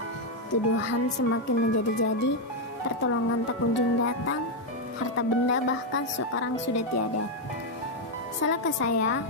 Tuduhan semakin menjadi-jadi, pertolongan tak kunjung datang, harta benda bahkan sekarang sudah tiada. Salahkah saya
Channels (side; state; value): both; normal; correlation 0.02